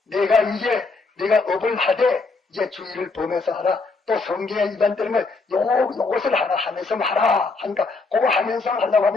내가 업을 하되 이제 주의를 범해서 하라. 또 성경에 위반되는 걸 요것을 하나 하면서 하라 하니까 그거 하면서 하려고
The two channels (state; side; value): quieter; right; 3.9 dB